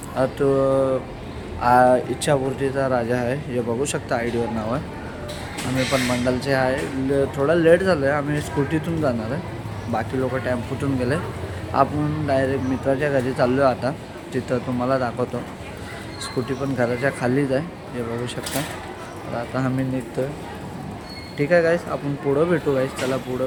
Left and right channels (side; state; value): both; identical; correlation 1.00